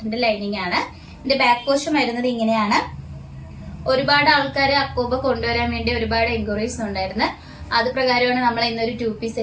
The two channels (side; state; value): both; identical; correlation 1.00